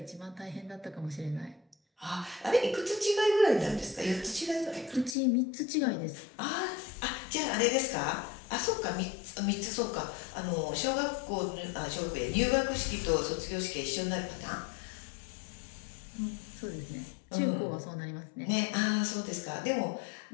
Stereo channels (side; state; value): right; drops out; at 5.2 s